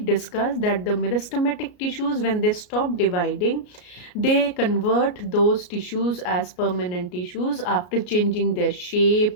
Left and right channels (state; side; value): late; right; 34 ms